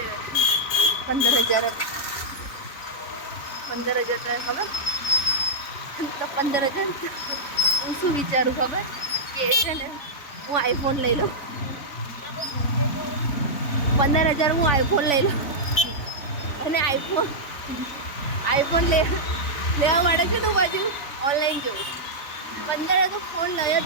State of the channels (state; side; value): late; right; 3.5 ms